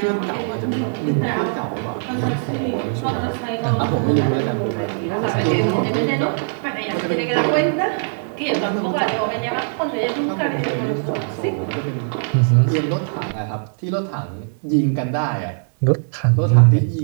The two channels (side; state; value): left; silent; 64 dB below the other